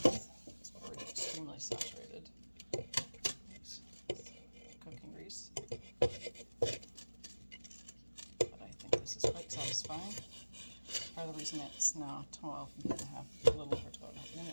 It's already extremely saturated. Cooking grease, but I think this is quite satisfying. Part of the reason it's now 12.5, a little over 12.5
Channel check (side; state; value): both; inverted; correlation -1.00